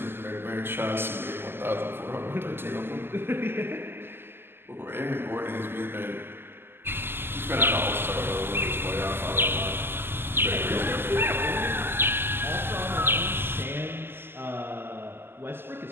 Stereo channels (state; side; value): late; left; 0.11 ms